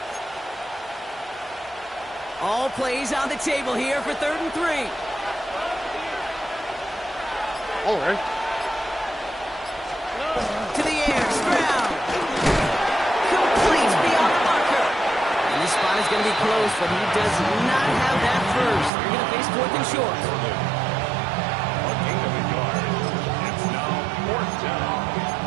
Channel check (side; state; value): left; drops out; at 18.9 s